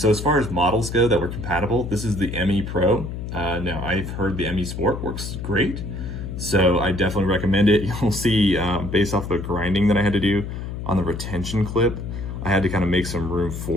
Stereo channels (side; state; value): left; noise; hum, 7 dB below the sound